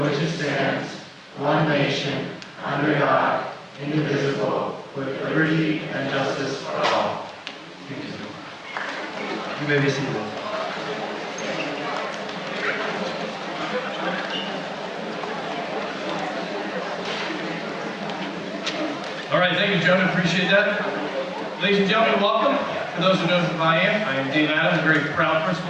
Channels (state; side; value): identical; both; correlation 1.00